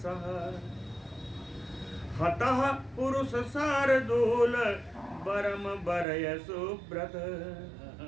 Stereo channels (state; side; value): drops out; left; at 6.1 s